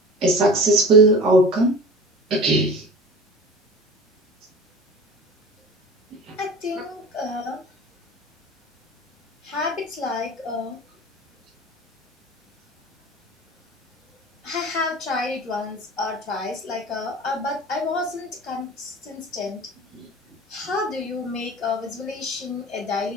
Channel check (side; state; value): both; normal; correlation 0.37